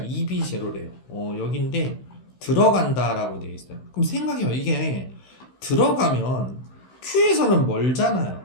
여기인데 들어간다라고 되어 있어요. 그럼 생각해요. 이게 들어가면 Q에서는 멀잖아요.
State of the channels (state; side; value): late; right; 16 ms